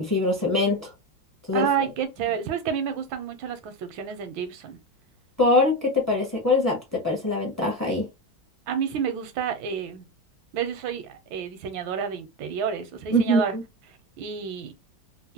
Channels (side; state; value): both; normal; correlation 0.16